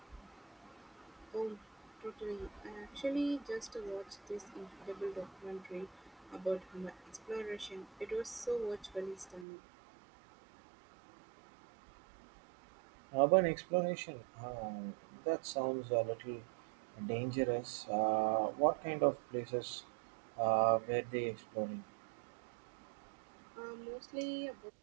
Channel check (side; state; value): left; drops out; at 9.5 s